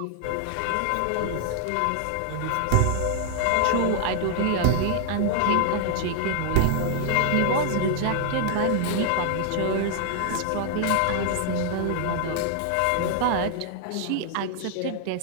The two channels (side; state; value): both; different; correlation 0.00